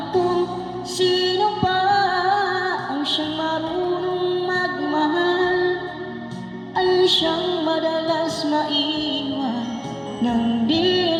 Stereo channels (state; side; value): identical; both; correlation 1.00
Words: kung sino pa ang siyang marunong magmahal ay siyang madalas maiwan nang di